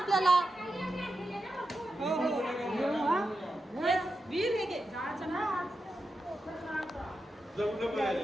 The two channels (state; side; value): normal; both; correlation 0.89